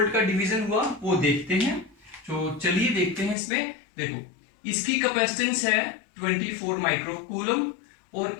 का डिवीजन हुआ वो देखते हैं। तो चलिए देखते हैं। इसमें देखो इसकी कैपेसिटेंस है 24 माइक्रोकूलम, और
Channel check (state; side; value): drops out; right; at 3.4 s